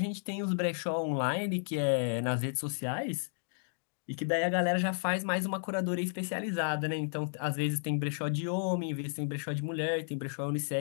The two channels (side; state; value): right; silent; digital silence